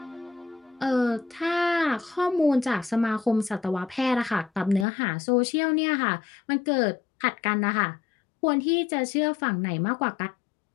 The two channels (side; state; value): right; drops out; at 4.9 s